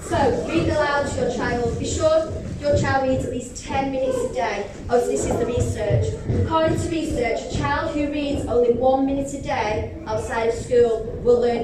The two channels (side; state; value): both; identical; correlation 1.00